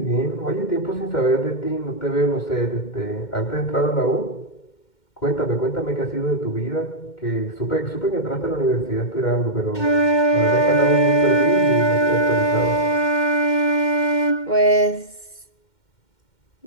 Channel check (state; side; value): late; right; 2.1 ms